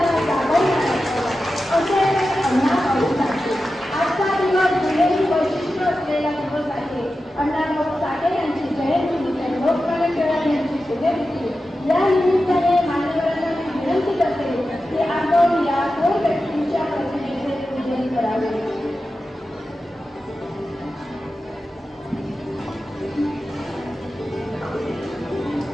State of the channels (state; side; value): normal; both; correlation 0.92